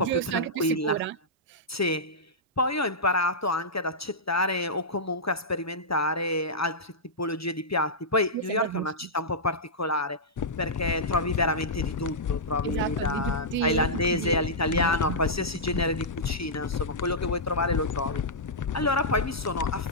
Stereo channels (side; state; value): both; normal; correlation -0.12